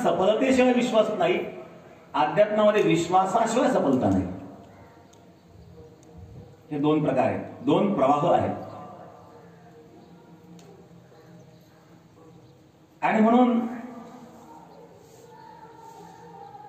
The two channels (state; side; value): identical; both; correlation 1.00